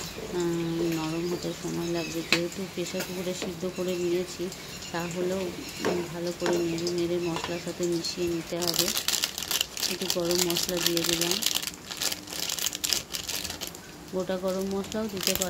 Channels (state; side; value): identical; both; correlation 1.00